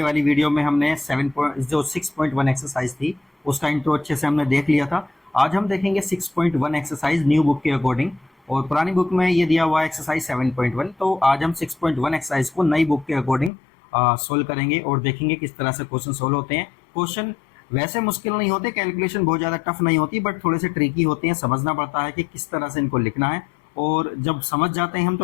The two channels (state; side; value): drops out; right; at 13.5 s